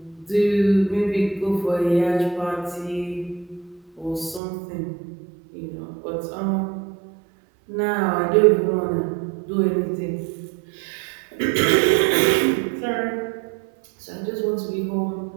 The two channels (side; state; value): left; drops out; at 4.4 s